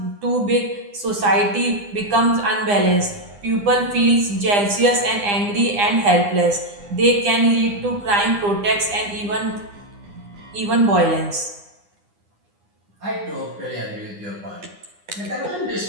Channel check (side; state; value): left; late; 9.8 ms